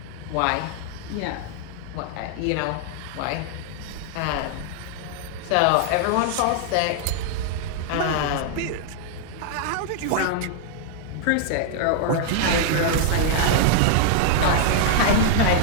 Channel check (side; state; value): both; different; correlation -0.01